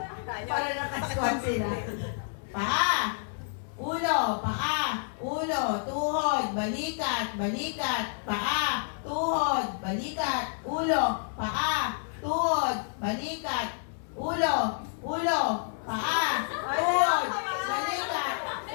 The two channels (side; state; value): right; silent; digital silence